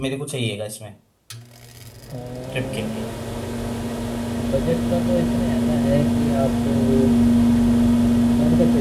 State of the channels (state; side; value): identical; both; correlation 1.00